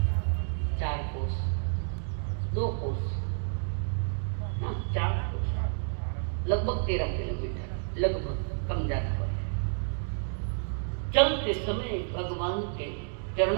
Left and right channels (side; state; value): left; silent; digital silence